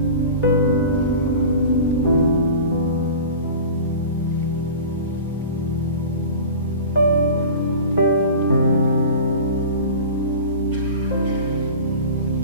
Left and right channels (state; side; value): inverted; both; correlation -0.36